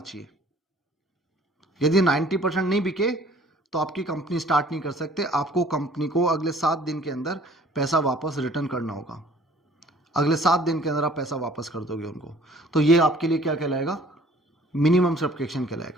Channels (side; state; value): both; normal; correlation 0.54